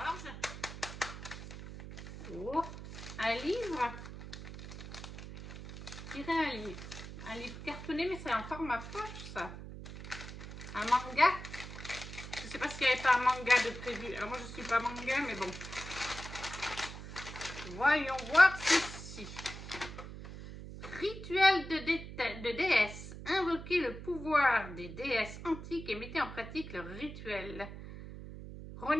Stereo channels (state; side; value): noise; right; hum, 11 dB below the sound